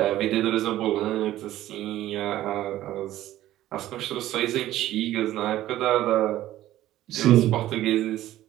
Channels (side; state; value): left; quieter; 14.2 dB